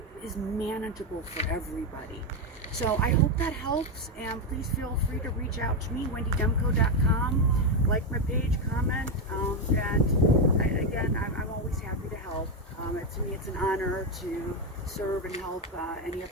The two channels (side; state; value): both; normal; correlation 0.07